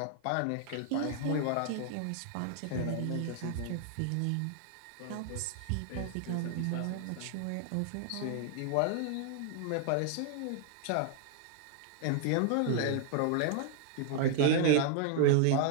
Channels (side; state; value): both; different; correlation 0.00